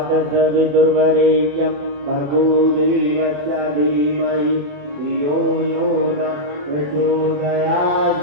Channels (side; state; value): left; late; 28 ms